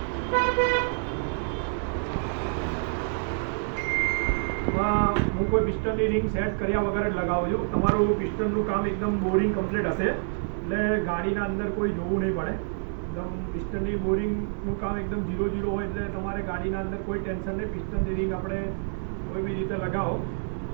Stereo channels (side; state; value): left; silent; digital silence